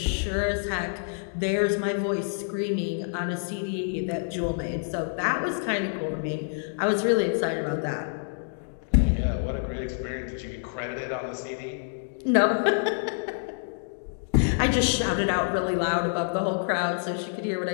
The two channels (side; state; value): right; silent; digital silence